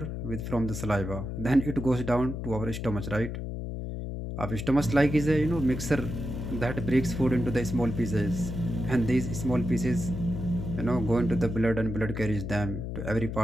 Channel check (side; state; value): left; noise; hum, 5 dB below the sound